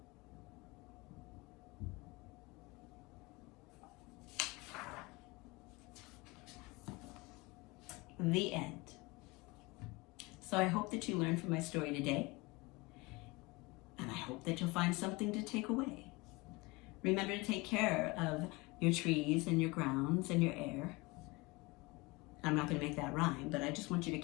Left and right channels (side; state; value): right; quieter; 24.4 dB